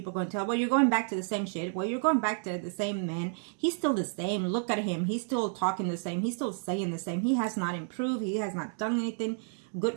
are going to tell, well, you're going back to the same shit. Well, you're going back to the same man. He's still the same. Look at him. He's still talking the same. He's still saying the same. He has not improved. He has not done anything good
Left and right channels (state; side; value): silent; left; 57 dB below the other